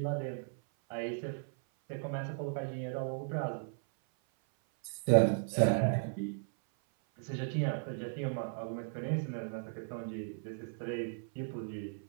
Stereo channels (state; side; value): silent; left; 54 dB below the other